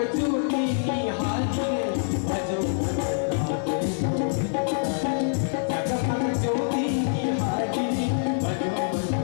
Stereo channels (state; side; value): silent; right; 61 dB below the other